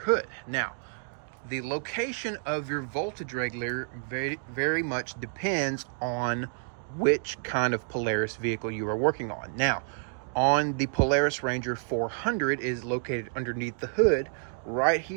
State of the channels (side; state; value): left; silent; digital silence